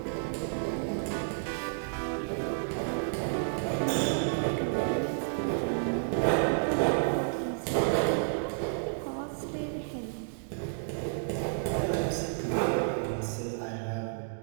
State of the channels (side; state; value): left; silent; digital silence